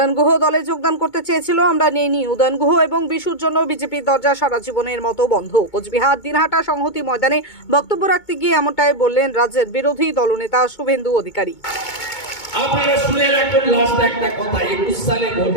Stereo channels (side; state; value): right; late; 2.2 ms